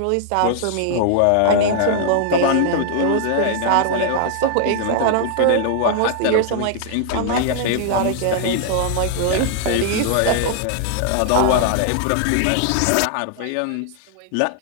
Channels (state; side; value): different; both; correlation 0.00